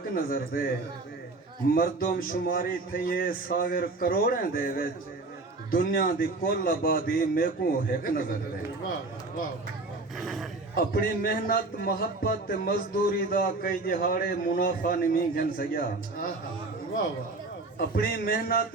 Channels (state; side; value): quieter; left; 3.3 dB